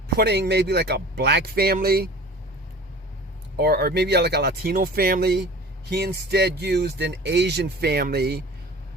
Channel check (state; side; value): normal; both; correlation 0.41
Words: putting maybe like a black family or maybe like a Latino family, he instead used an Asian family